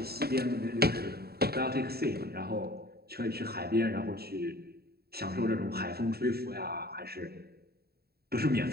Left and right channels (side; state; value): left; late; 0.46 ms